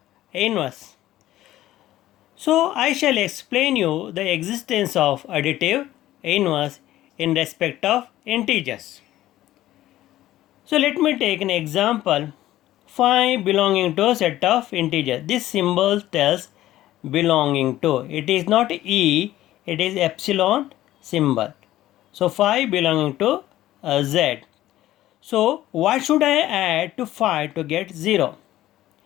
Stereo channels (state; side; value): quieter; right; 14.6 dB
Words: inverse. So I shall explain you the existence of additive inverse in respect of integers. So let me take an example. 5 belonging to a set of integers. This symbol tells belonging to. It is not E, it is epsilon symbol. So 5 belonging to Z. So what should I add to 5 to get 0?